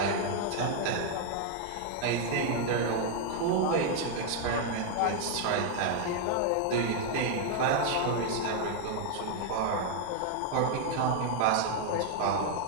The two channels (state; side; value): different; both; correlation 0.00